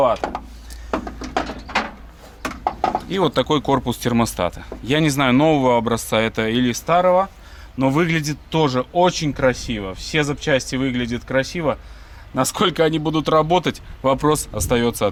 И вот такой корпус термостата. Я не знаю, нового образца это или старого, но выглядит тоже очень красиво. Все запчасти выглядят красиво. Насколько они будут работать, вопрос остается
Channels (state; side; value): identical; both; correlation 1.00